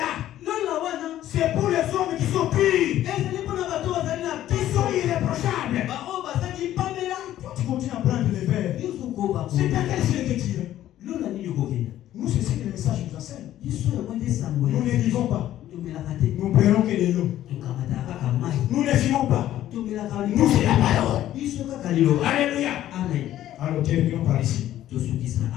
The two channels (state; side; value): quieter; right; 12.8 dB